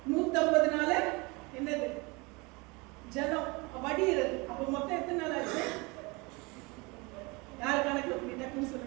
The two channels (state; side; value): quieter; left; 26.7 dB